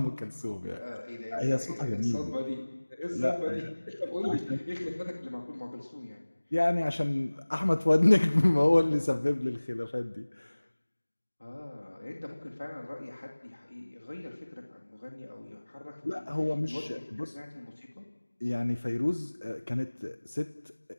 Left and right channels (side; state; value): both; inverted; correlation -1.00